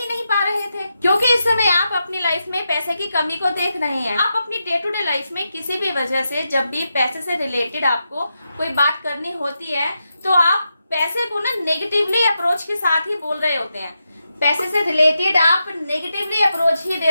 नहीं पा रहे थे, क्योंकि इस समय आप अपनी लाइफ में पैसे की कमी को देख रहे हैं। आप अपनी डे टू डे लाइफ में किसी भी वजह से जब भी पैसे से रिलेटेड आपको कोई बात करनी होती है तो आप पैसे को ना नेगेटिवली अप्रोच के साथ ही बोल रहे होते हैं, पैसे से रिलेटेड आप नेगेटिवली अप्रोच ही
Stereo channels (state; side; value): inverted; both; correlation -0.87